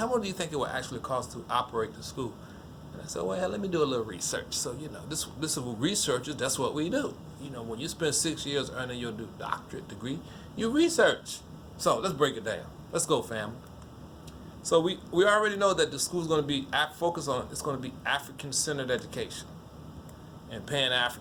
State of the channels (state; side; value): identical; both; correlation 1.00